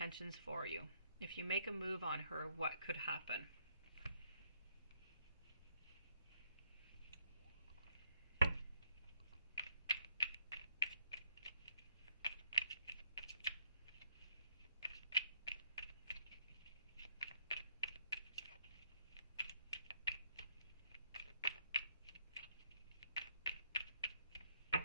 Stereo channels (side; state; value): both; inverted; correlation -0.71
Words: for you. If you make a move on her, what could happen?